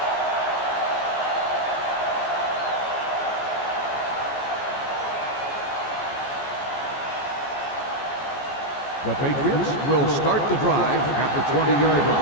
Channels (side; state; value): right; late; 14 ms